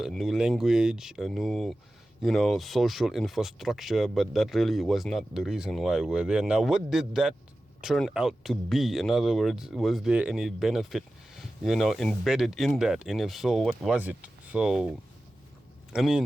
new language, a new, social infrastructure, but that really was not the reason why we're there. Now, what did that turn out to be? In other words, was there any benefit, embedded in that? And if so, what was it? So, I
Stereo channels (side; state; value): both; normal; correlation 0.95